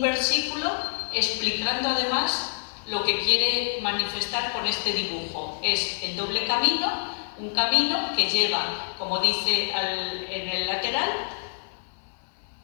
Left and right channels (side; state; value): right; silent; 57 dB below the other